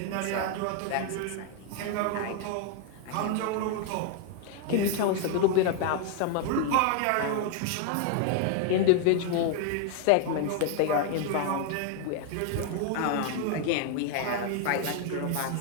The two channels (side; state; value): both; different; correlation 0.01